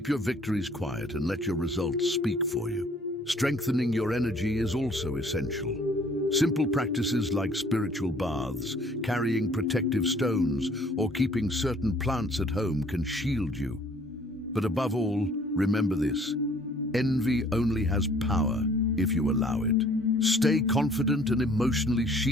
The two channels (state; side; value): normal; both; correlation 0.57